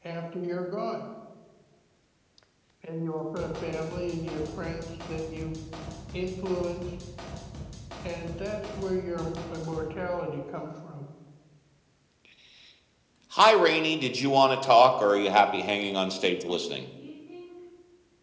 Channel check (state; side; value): identical; both; correlation 1.00